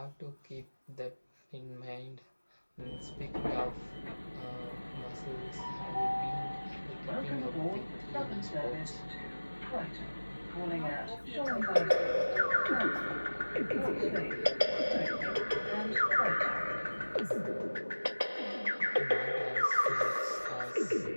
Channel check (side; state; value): both; inverted; correlation -1.00